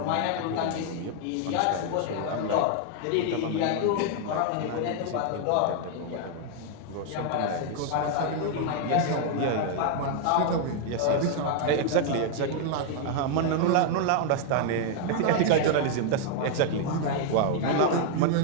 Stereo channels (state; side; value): different; both; correlation 0.00